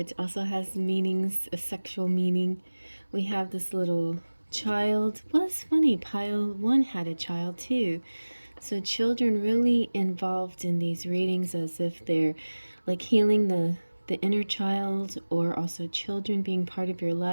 also has meanings, a sexual meaning. We have this little child. Well, it's funny, pile 1 had a child too. So children really involved in these readings, as if they're like healing the inner child, or also children being part of your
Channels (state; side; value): inverted; both; correlation -1.00